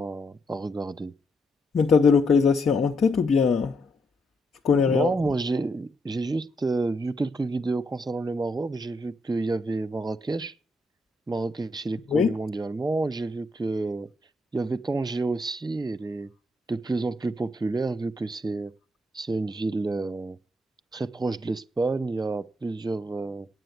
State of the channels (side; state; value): both; normal; correlation 0.78